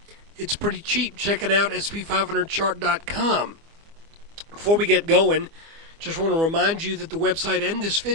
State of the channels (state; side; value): late; left; 24 ms